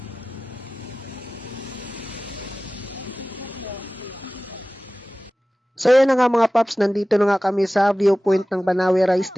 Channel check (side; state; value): both; normal; correlation 0.97